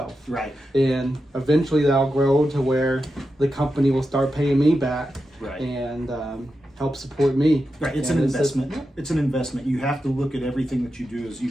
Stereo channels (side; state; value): both; normal; correlation 0.89